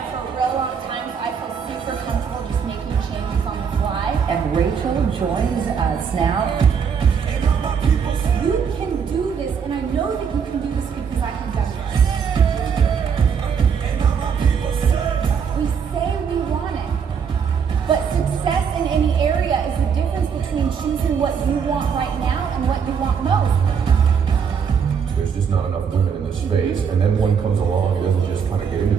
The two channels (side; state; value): left; quieter; 6.8 dB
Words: for a real long time, so I feel super comfortable just making changes on the fly. And Rachel joins us now. You can do this, and I know that you can do this because I have done this. We say we want it, but success in any area is the difference between choosing what you want right now and what you want most. There's just not enough women in this space, and then one comes along and doesn't just kind of get into